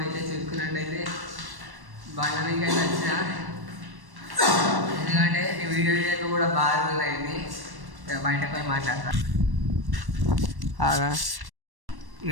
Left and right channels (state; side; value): late; left; 1.1 ms